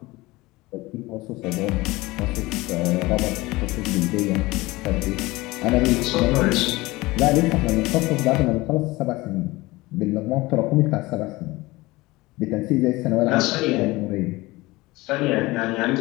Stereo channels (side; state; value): right; quieter; 20.8 dB